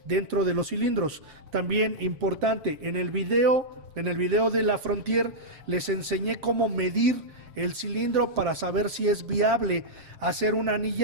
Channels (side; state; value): left; late; 7.5 ms